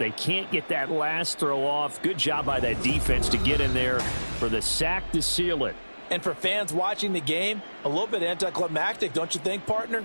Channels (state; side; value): inverted; both; correlation -1.00